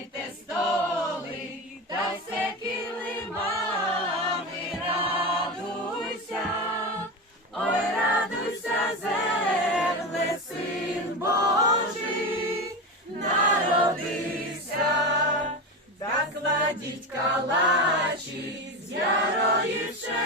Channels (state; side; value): normal; both; correlation 0.21